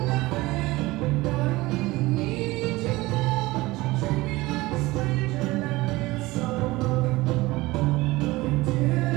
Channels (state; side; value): quieter; left; 20.3 dB